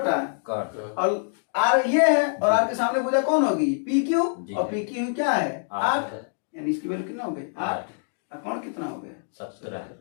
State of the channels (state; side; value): silent; right; digital silence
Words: कर्ण। और आर ये है और आर के सामने भुजा कौन होगी? P Q. जी। और पी क्यू क्या है? 8। 8। यानी इसकी वैल्यू कितना हो गई? 8। 8। और कौन कितना हो गया? 17।